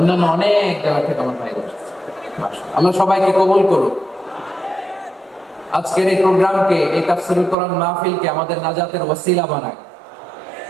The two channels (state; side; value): drops out; left; at 7.6 s